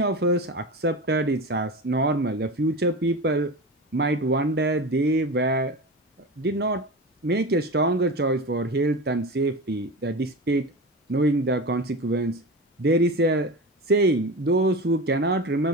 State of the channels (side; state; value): both; normal; correlation 0.27